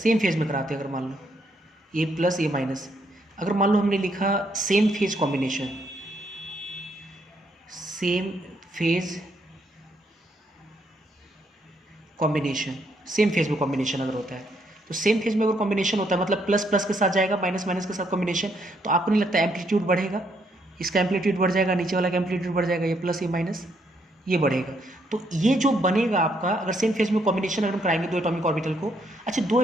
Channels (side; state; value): both; normal; correlation 0.73